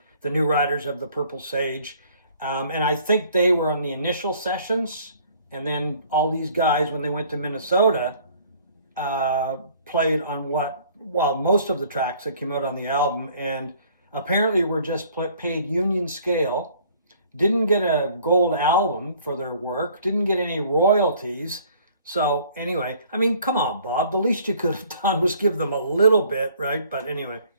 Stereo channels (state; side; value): inverted; both; correlation -0.56